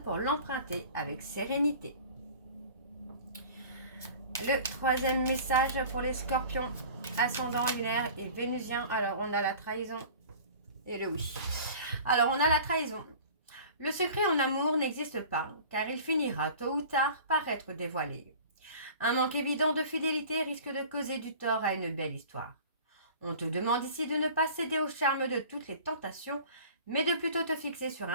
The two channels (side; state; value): both; inverted; correlation -0.43